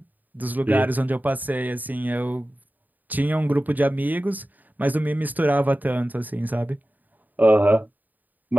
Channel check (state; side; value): late; left; 0.084 ms